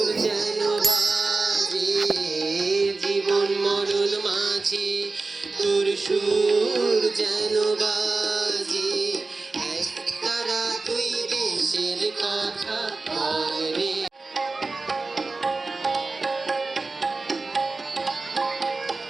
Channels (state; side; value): quieter; left; 3.7 dB